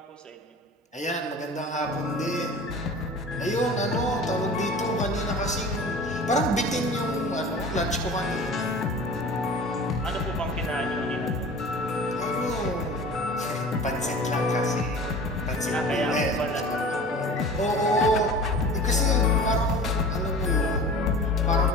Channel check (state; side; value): normal; both; correlation 0.40